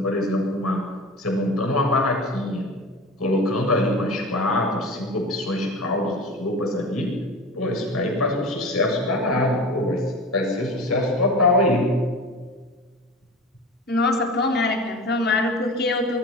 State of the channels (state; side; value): normal; both; correlation 0.33